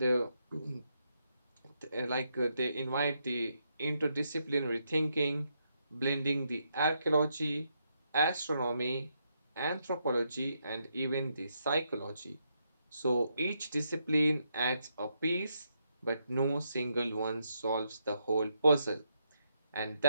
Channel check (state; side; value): inverted; both; correlation -0.79